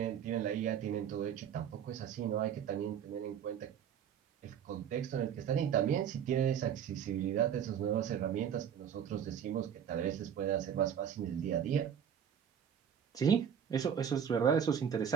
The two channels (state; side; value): quieter; left; 8.5 dB